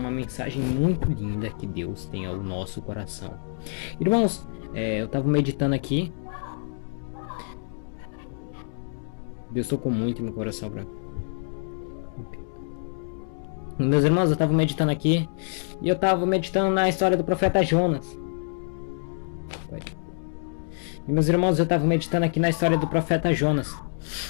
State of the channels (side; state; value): right; silent; digital silence